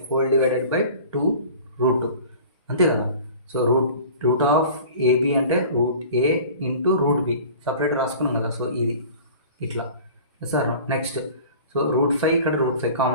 హోల్ డివైడెడ్ బై 2 √2 అంతే కదా. సో రూట్ ఆఫ్ ఏబి అంటే √a × √b సపరేట్ రాసుకున్నాం కదా. సో ఇది ఇట్లా సార్. నెక్స్ట్ సో √5 ఇక్కడ √5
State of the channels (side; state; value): both; inverted; correlation -0.42